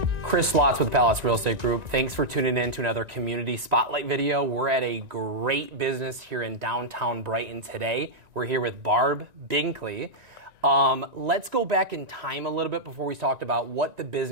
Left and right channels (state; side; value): late; left; 1.9 ms